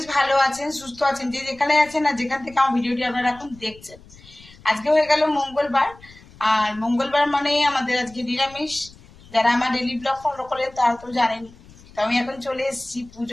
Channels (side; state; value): left; noise; rumble, 23 dB below the sound